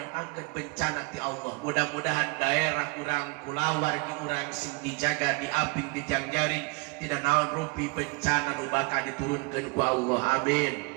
bencana ti Allah. Mudah-mudahan daerah urang kulawargi urang sing dijaga di abing di jangjaring tidak naon rumpi bencana nu bakal diturunkeun ku Allah. Amin.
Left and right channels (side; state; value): left; quieter; 29.4 dB